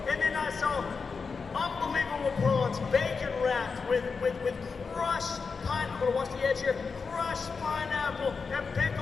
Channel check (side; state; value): right; quieter; 5.0 dB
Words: And then I saw unbelievable prawns, bacon wrapped with crushed pineapple. Watch the edge here. Crushed pineapple and